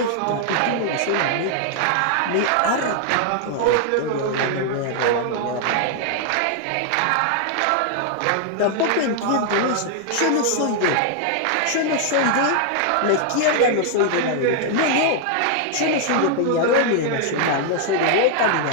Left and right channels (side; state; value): both; different; correlation 0.00